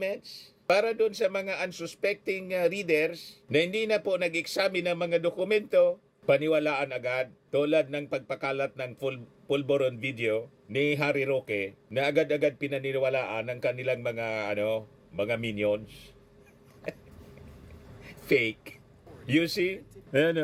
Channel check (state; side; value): identical; both; correlation 1.00